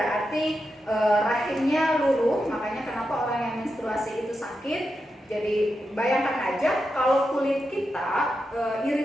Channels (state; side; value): normal; both; correlation 0.87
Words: rahimnya luruh. Makanya kenapa orang yang menstruasi itu sakit. Jadi bayangkan aja kalau kulit kita